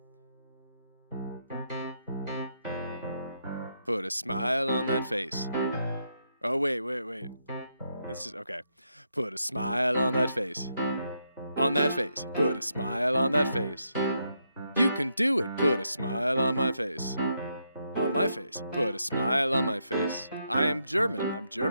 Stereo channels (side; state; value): both; inverted; correlation -0.80